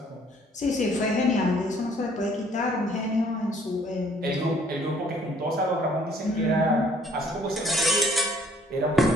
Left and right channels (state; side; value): normal; both; correlation 0.61